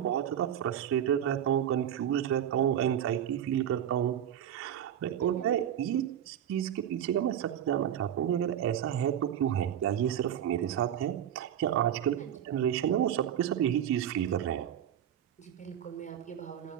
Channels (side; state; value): left; quieter; 10.0 dB